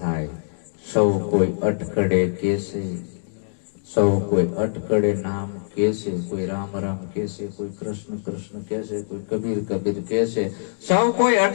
થાય. સૌ કોઈ અટકડે કેસે, સૌ કોઈ અટકડે નામ કેસે, કોઈ રામ રામ કેસે, કોઈ કૃષ્ણ કૃષ્ણ કેસે, કોઈ કબીર કબીર કેસે. સૌ કોઈ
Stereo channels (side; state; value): right; silent; digital silence